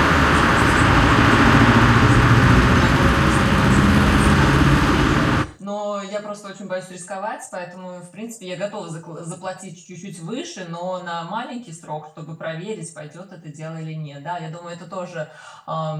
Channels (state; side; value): identical; both; correlation 1.00